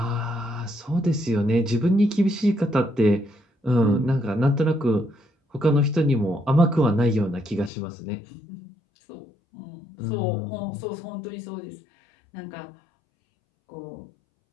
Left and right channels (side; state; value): right; drops out; at 7.7 s